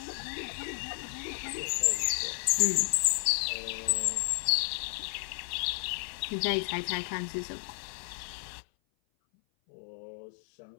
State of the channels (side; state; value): right; silent; 56 dB below the other